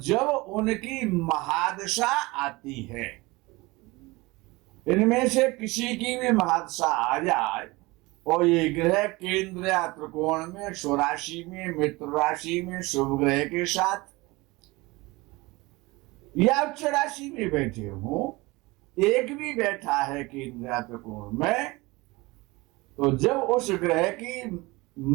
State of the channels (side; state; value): left; quieter; 22.7 dB